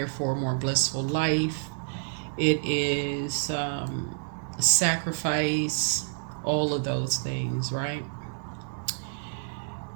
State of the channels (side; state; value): left; silent; digital silence